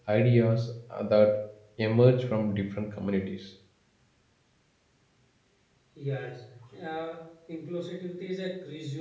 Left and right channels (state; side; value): identical; both; correlation 1.00